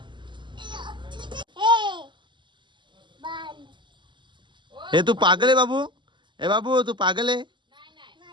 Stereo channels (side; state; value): left; late; 0.23 ms